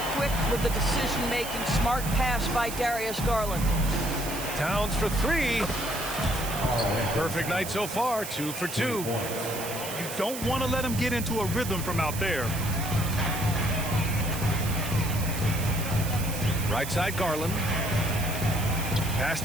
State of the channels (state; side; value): noise; right; hiss, 8 dB below the sound